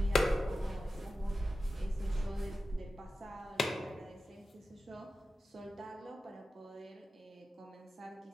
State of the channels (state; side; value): normal; both; correlation 0.93